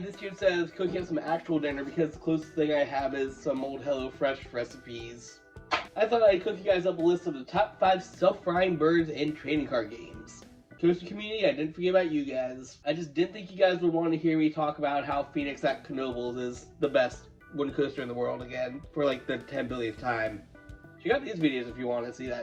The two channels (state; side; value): identical; both; correlation 1.00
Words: this year says cooking up some actual dinner because the closest thing I have is some old HelloFresh recipes. I thought I'd cook you guys up a list of the top 5 self-frying birds in trading card games. Toaster community, I didn't forget about you guys. I just didn't think you guys would want to hear me talk about how Phoenix at Knoebels is the best wooden coaster in the world again, for like the 10 billionth time. Check out these videos if you want to see